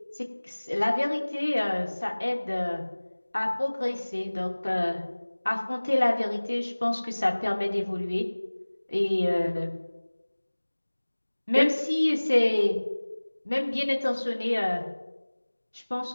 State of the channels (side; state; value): both; inverted; correlation -1.00